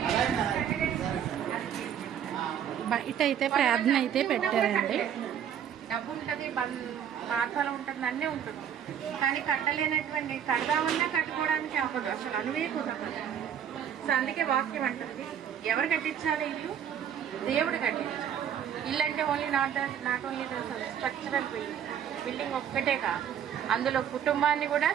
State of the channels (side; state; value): left; quieter; 9.1 dB